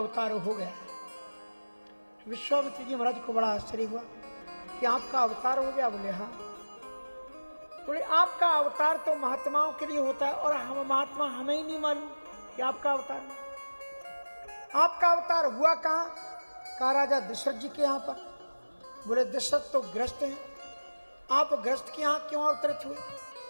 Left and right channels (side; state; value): both; inverted; correlation -1.00